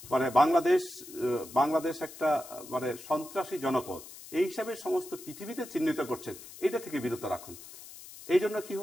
বাংলাদেশ একটা সন্ত্রাসী জনপদ এই হিসাবে সমস্ত পৃথিবীতে চিহ্নিত করছেন, এটা থেকে বিরত রাখুন। এই জন্য কি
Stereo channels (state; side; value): noise; left; hiss, 16 dB below the sound